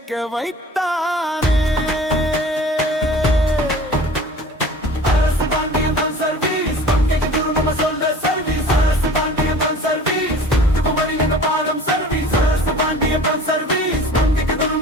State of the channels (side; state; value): both; normal; correlation 0.44